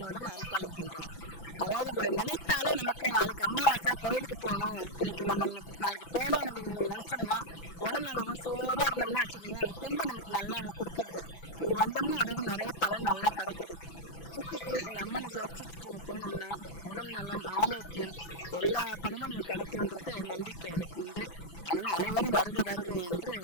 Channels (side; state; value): right; late; 6.0 ms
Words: அருள் பாலிக்கின்றார். அதாவது இவங்களை நினைத்தாலே நமக்கு நாளைக்கு அமாவாசை கோயிலுக்கு போகணும், இன்றைக்கி நம்ம நாளைக்கு போகணும் அப்படின்னு நினச்சோம்னா உடல் நம்ம சோர்வாக இருந்தோம்னா வச்சுருந்தீங்களா அந்த தெம்பு நமக்கு நல்லா கொடுத்துருது. இங்கே வந்தோம்னா அதோட நிறைய பலன் நல்லா கிடைக்குது. சுற்றிட்டு இந்த அம்மனை தரிசிச்சுட்டு நம்ம போனோம்னா உடல் நலம், ஆரோக்கியம் எல்லா பலமும் நமக்கு கிடைக்கும்ன்றது நம்பிக்கை எனக்கு உண்டு. அதனால் அனைவரும் வருக வருக என்று